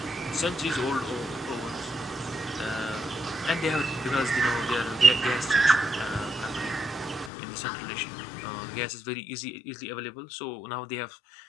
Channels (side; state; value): right; drops out; at 7.3 s